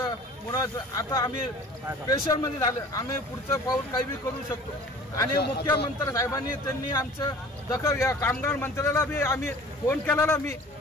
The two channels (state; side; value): normal; both; correlation 0.46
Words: मुलाचं आता आम्ही प्रेशरमध्ये झालं. आम्ही पुढचं पाऊल काही बी करू शकतो. आणि मुख्यमंत्री साहेबांनी त्यांनी आमचं दखल घ्या. कामगार मंत्र्याला बी आम्ही फोन केलेला, मी